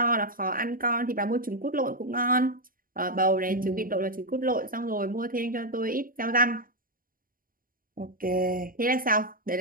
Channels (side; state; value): left; late; 0.41 ms